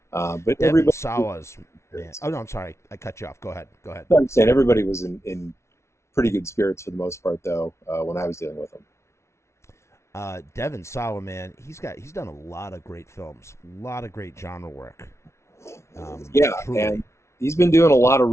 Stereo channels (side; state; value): right; late; 0.13 ms